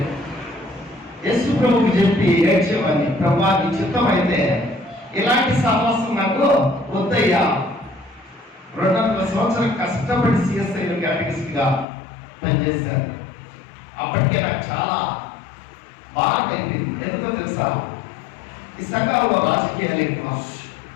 యేసు ప్రభువుకి చెప్పి ఏడ్చేవాడిని, ప్రభా నీ చిత్తం అయితే ఇలాంటి సహవాసం నాకు వద్దయ్యా. 200 సంవత్సరాలు కష్టపడి సిఎస్ఐలో క్యాటగిస్ట్గా పనిచేశారు. అప్పటికే నాకు చాలా భారం అయిపోయింది. ఎందుకో తెలుసా? ఈ సంఘాల్లో రాజకీయాలు ఎక్కువ,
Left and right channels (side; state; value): right; drops out; at 11.9 s